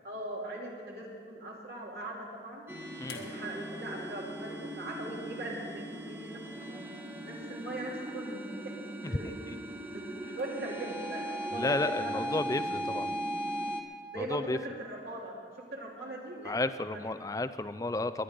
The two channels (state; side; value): normal; both; correlation 0.55